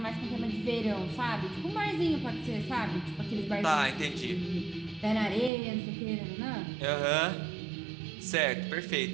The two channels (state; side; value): drops out; left; at 5.5 s